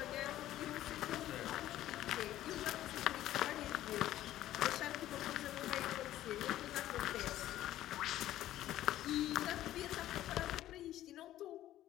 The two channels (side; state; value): right; quieter; 13.6 dB